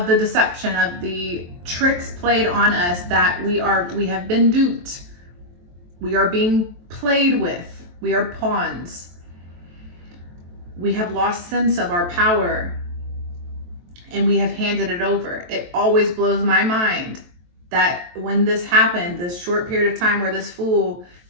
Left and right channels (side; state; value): left; late; 23 ms